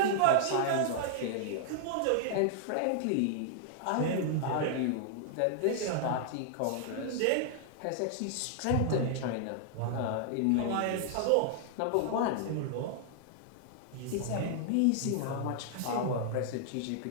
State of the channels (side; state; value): both; different; correlation -0.01